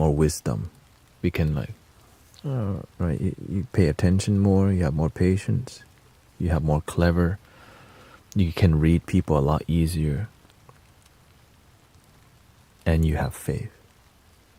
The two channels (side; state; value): both; identical; correlation 1.00